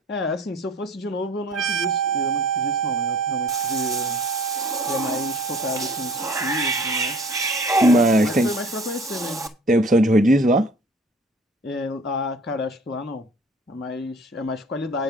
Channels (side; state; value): both; normal; correlation 0.48